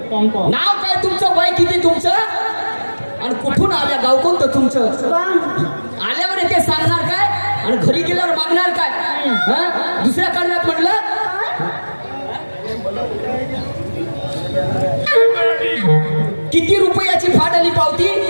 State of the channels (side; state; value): both; inverted; correlation -1.00